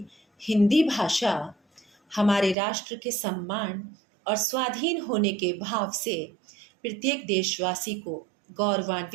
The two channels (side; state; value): left; drops out; at 2.6 s